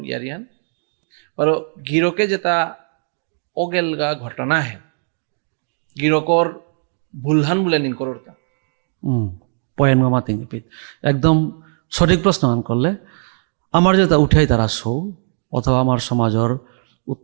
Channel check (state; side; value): silent; left; 59 dB below the other